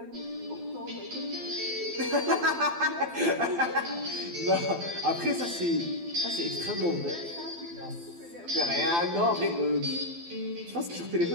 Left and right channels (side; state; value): left; late; 12 ms